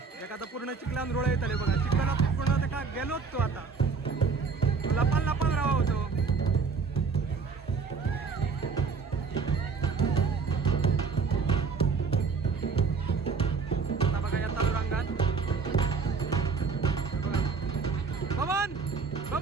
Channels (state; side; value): quieter; left; 5.1 dB